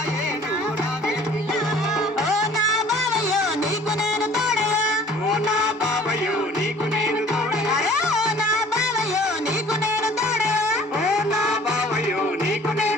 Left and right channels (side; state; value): both; normal; correlation 0.51